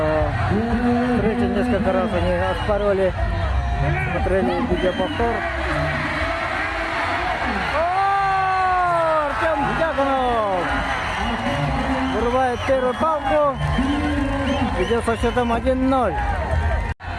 встрече. Несколько раз они оспаривали, смотрели видеоповтор. Артем Дьяконов вырывает первую палку. Идет со счетом 1-0.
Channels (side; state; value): both; identical; correlation 1.00